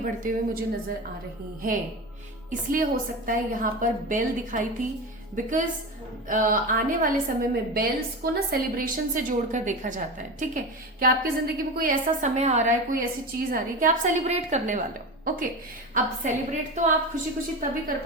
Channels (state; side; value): normal; both; correlation 0.24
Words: हुए मुझे नजर आ रही हैं। इसलिए हो सकता है यहाँ पर बेल दिखाई थी, बिकॉज आने वाले समय में बेल्स को ना सेलिब्रेशन से जोड़कर देखा जाता है। ठीक है, कि आपकी जिंदगी में कोई ऐसा समय आ रहा है, कोई ऐसी चीज आ रही है कि आप सेलिब्रेट करने वाले हो। ओके, अब सेलिब्रेट तो आप खुशी खुशी तभी कर